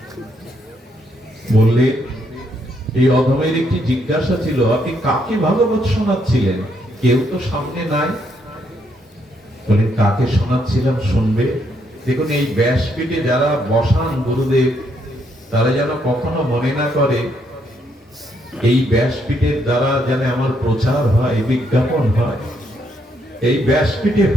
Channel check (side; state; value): both; normal; correlation 0.74